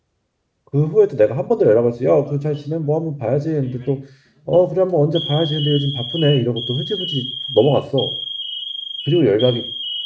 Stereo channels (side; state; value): both; identical; correlation 1.00